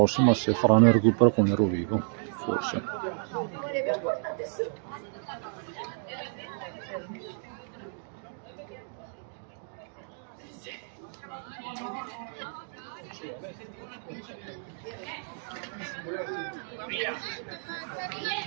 se faranno il recupero con il Rovigo, forse.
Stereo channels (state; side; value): silent; left; 57 dB below the other